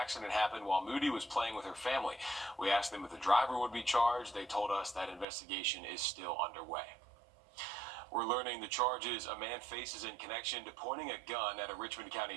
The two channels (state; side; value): drops out; left; at 5.2 s